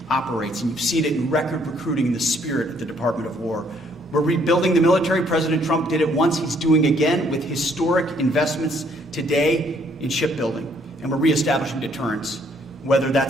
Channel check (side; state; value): both; normal; correlation 0.66